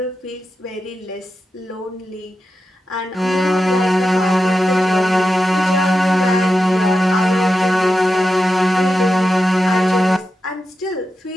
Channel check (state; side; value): normal; both; correlation 0.90